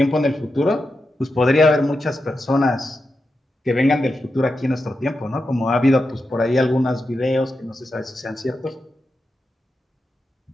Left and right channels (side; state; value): both; normal; correlation 0.89